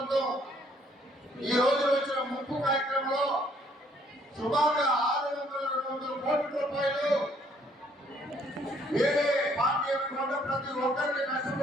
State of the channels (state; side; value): normal; both; correlation 0.65